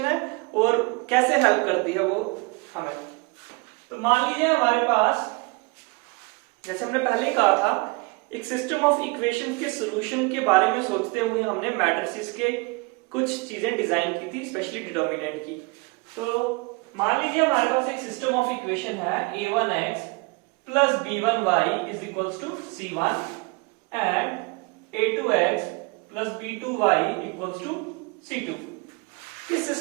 है और कैसे हेल्प करती है वो हमें। तो मान लीजिए हमारे पास, जैसे हमने पहले ही कहा था, एक सिस्टम ऑफ इक्वेशन के सॉल्यूशन के बारे में सोचते हुए हमने मैट्रिसेस के कुछ चीजें डिजाइन की थी, स्पेशली डिटर्मिनेंट की। तो मान लीजिए हमारे पास एक सिस्टम ऑफ इक्वेशन है a1x plus b1y is equals to c1 and a2x plus b2y equals to c2। किस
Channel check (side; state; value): left; quieter; 27.7 dB